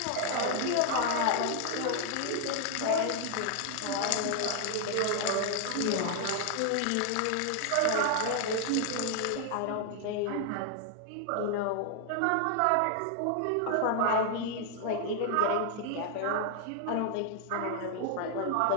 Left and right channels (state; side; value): different; both; correlation 0.00